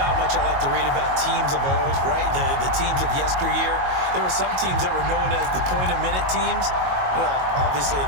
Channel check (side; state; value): left; late; 22 ms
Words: how much I like to read about teams of old, right? The teams of yesteryear. There were some teams that were known as the point-a-minute teams. Well, obviously in